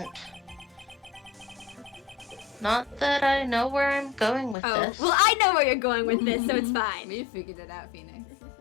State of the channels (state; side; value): drops out; right; at 4.5 s